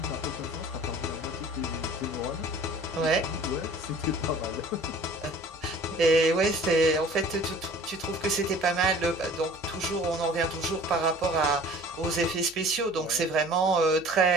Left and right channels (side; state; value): left; noise; hum, 26 dB below the sound